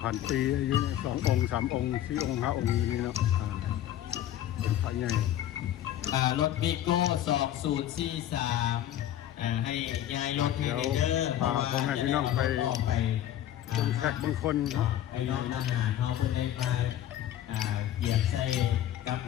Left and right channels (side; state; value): right; quieter; 11.8 dB